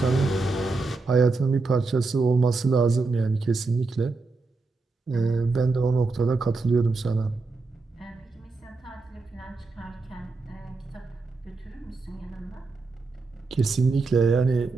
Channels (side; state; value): left; quieter; 3.9 dB